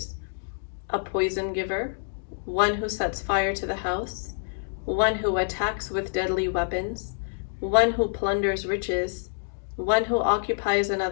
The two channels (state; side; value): silent; right; digital silence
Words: a poison giver, one who sets fire to the house, one who attacks with deadly weapons, one who plunders riches, one who occupies